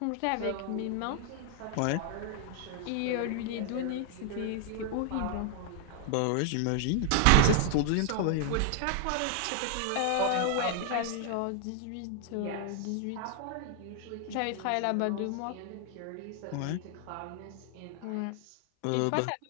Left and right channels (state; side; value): different; both; correlation 0.00